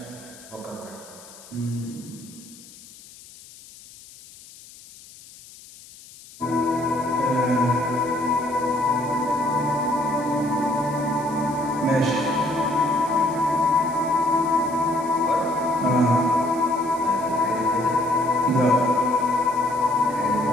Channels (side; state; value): left; noise; hiss, 20 dB below the sound